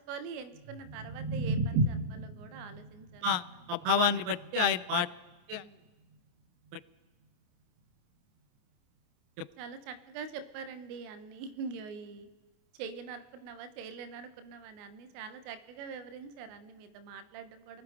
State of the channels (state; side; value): late; left; 28 ms